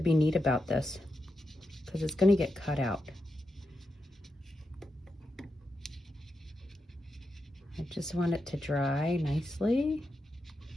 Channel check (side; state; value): both; normal; correlation 0.87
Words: be neat about this because it's gonna get cut out. I just want it to dry nicely.